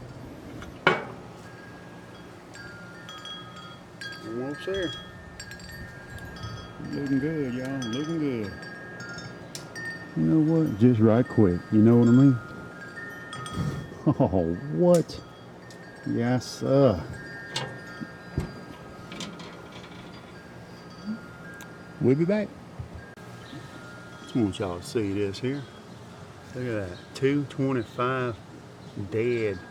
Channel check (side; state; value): both; identical; correlation 1.00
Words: Almost there. Looking good, y'all. Looking good. You know what? Just right quick. You know what I mean? Oh, what? Yes, sir. We'll be back. Just want y'all to see this here. Look at that. 225 dead